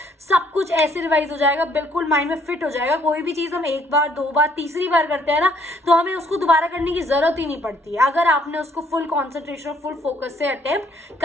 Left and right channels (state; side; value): normal; both; correlation 0.65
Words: सब कुछ ऐसे रिवाइज हो जाएगा, बिल्कुल माइंड में फिट हो जाएगा। कोई भी चीज़ हम एक बार, 2 बार, तीसरी बार करते हैं ना, तो हमें उसको दोबारा करने की जरूरत ही नहीं पड़ती है अगर आपने उसको फुल कॉन्सेंट्रेशन और फुल फोकस से अटेम्प्ट